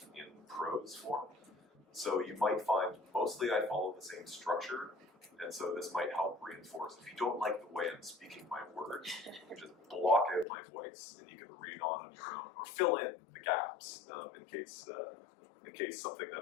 in prose form. So you might find mostly I follow the same structure, and so this might help reinforce. If you don't like the way I'm speaking my words, you just block out my voice, and you can read on your own, or fill in the gaps in case something that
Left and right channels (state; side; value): drops out; right; at 10.5 s